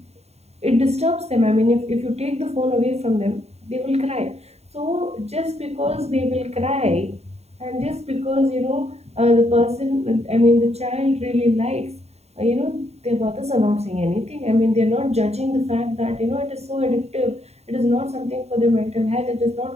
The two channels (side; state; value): left; late; 0.31 ms